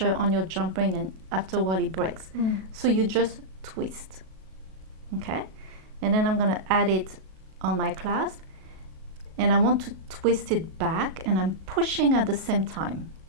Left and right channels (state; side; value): late; left; 37 ms